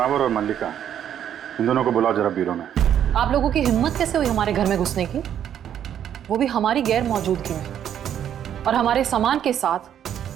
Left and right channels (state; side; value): quieter; left; 9.8 dB